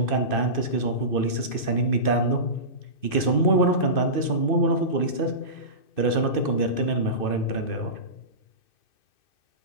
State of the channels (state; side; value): late; right; 2.6 ms